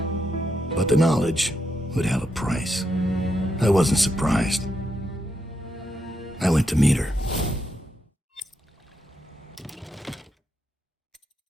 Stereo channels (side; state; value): both; normal; correlation 0.82